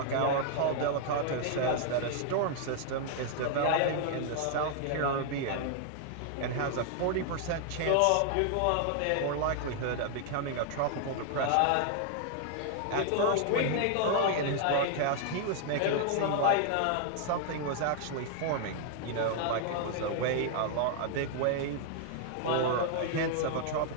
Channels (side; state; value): both; different; correlation 0.00